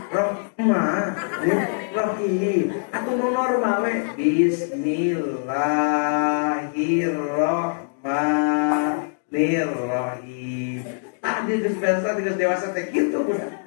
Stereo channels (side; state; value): right; silent; digital silence